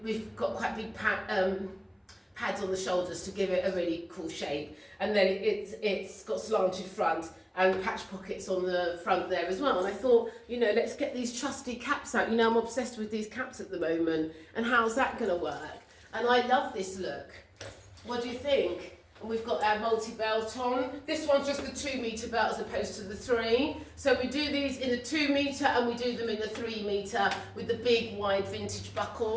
got quite big pads on the shoulders to give it a really cool shape, and then it's got slanted front and patch pockets on the front there as well. And I thought, you know, let's get these trusty caps out. You know, I'm obsessed with these caps at the moment, and how's that going to work? And I love this look. What do you think? And we've got our multi-belt on. This one's just the 2-metre belt as opposed to the 3. So we do these in the 2-metre and we do them in the 3-metre with the big wide vintage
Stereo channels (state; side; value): identical; both; correlation 1.00